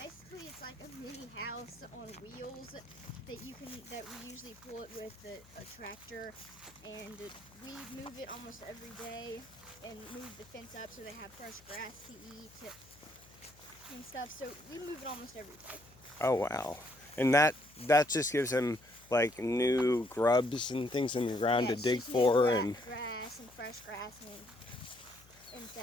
it's like a mini house on wheels that we usually pull it with a tractor, and we move it almost every day and move the fence up so they have fresh grass to eat and stuff. So we move it almost every day. Oh wow. And that just gives them like new grubs and things in the ground to dig for, and grass and fresh grass and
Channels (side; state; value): left; noise; hum, 25 dB below the sound